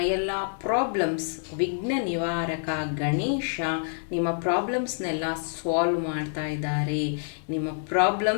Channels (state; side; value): silent; right; digital silence